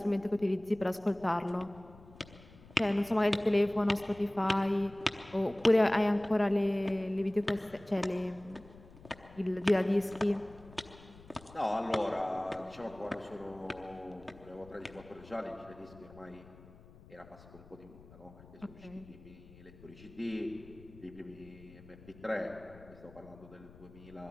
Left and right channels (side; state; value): left; noise; rumble, 21 dB below the sound